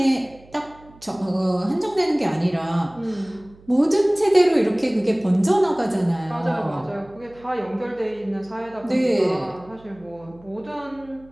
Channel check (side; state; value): right; noise; hum, 25 dB below the sound